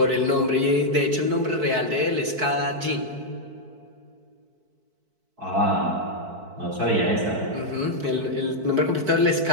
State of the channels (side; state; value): left; late; 4.5 ms